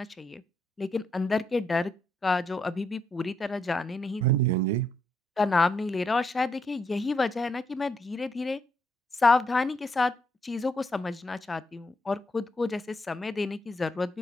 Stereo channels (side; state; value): both; normal; correlation 0.77